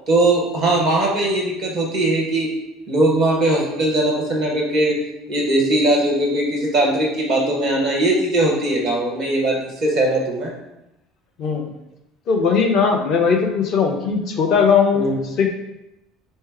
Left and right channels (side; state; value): both; normal; correlation 0.46